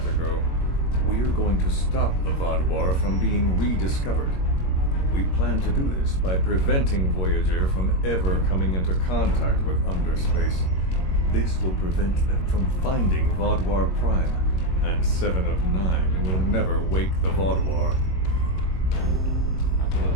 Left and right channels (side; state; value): right; late; 21 ms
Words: ago. We're going to stop the Vaadwaur from being rediscovered. We plan to do this by preventing Voyager from ever coming into contact with underspace. This will prevent them from finding Vaadwaur Prime, and 7 of 9 will never wake the Vaadwaur. I do